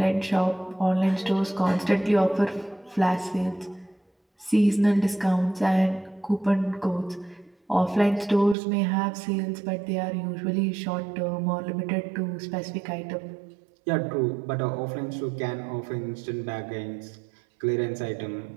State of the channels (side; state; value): left; drops out; at 8.6 s